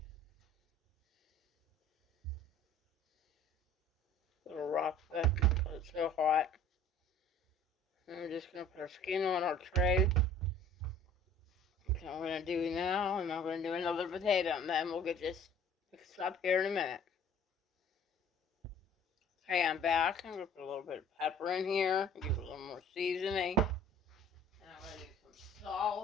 A little rough, but because it's so hot. And we're just going to put our skin on our tray. That's what I'm going to do now, and I'm going to do another potato, and then we'll get this mixed up here in a minute. Okay, I'm back. I'm going to put a little bit of pepper in here, give it a little more seasoning. And I'm going to do some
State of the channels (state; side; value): normal; both; correlation 0.50